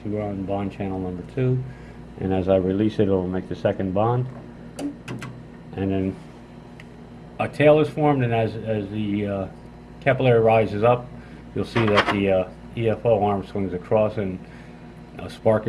see we're on bond channel number 2, and as I release it, it'll make the second bond. And then a tail is formed, and as the capillary rises up, you'll see that the EFO arm swings across and a spark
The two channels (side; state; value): both; identical; correlation 1.00